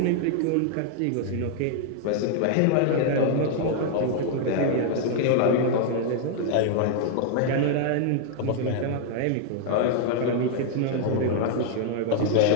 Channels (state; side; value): different; both; correlation 0.00